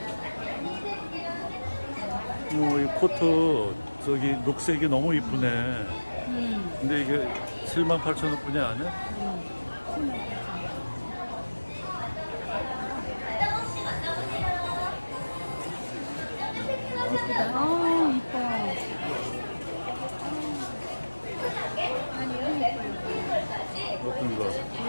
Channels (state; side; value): inverted; both; correlation -1.00